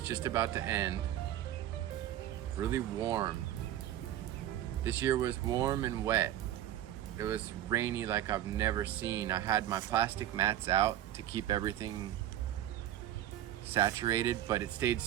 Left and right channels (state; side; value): quieter; left; 12.5 dB